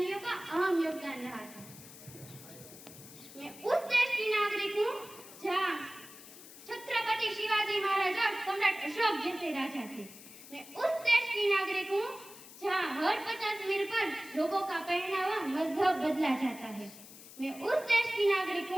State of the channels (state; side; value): noise; left; hiss, 17 dB below the sound